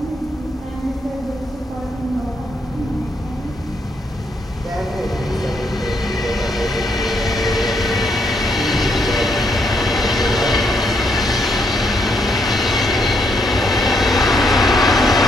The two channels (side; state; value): both; normal; correlation 0.75